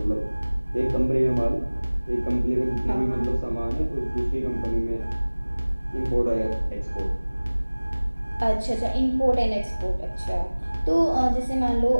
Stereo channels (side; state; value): both; inverted; correlation -1.00